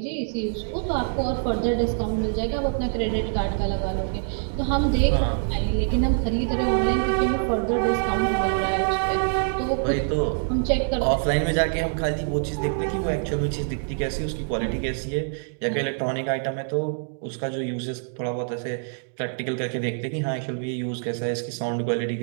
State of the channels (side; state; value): left; silent; digital silence